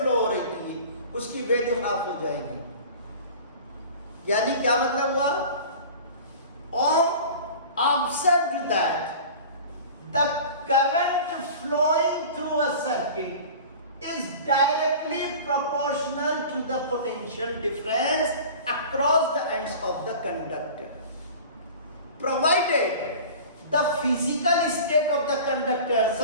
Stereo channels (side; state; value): both; inverted; correlation -0.39